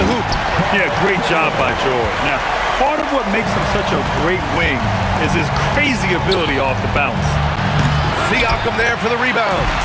hoop. Yeah, great job by George. Now, part of what makes him such a great wing is his crazy ability off the bounce. Siakam there for the rebound.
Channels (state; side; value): identical; both; correlation 1.00